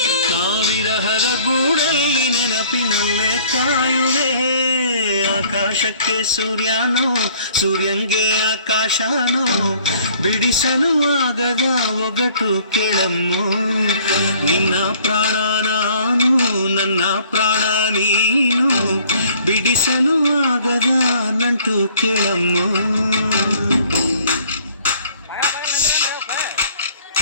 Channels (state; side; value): inverted; both; correlation -0.57